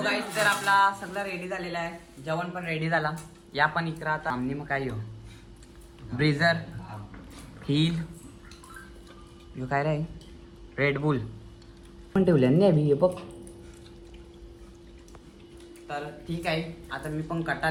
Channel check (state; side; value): identical; both; correlation 1.00